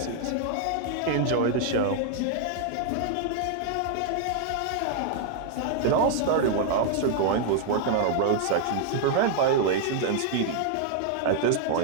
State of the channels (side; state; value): both; different; correlation 0.00